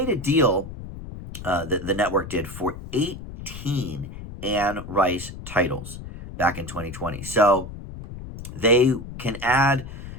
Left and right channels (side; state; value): left; noise; rumble, 12 dB below the sound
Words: a deal, the network did, for 18 Anne Rice titles back in 2020. So they can add